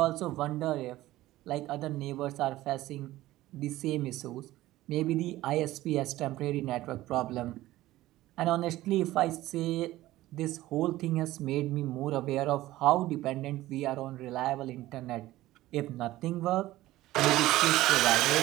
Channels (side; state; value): left; quieter; 16.3 dB